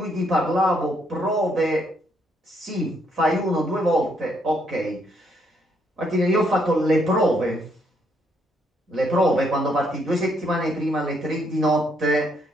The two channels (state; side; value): normal; both; correlation 0.73